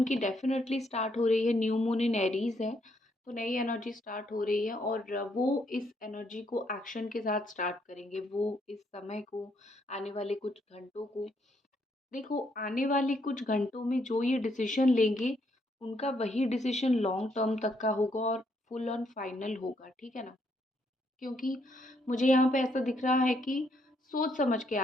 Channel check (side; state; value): both; normal; correlation 0.73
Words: डेफ़िनेटली स्टार्ट हो रही है, न्यू मून इन एरीज़ है, तो नई एनर्जी स्टार्ट हो रही है और वो इस एनर्जी को एक्शन के साथ स्टार्ट करेंगे। वो इस समय को, आने वाले कुछ घंटों को, देखो आने वाले कुछ घंटों में जो ये डिसीज़न लेंगे, उनका वही डिसीज़न लॉन्ग टर्म तक का होगा और फुल ऑन फाइनल होगा, ठीक है ना? क्योंकि मुझे यहाँ पे ऐसा दिख रहा है कि सोच समझ के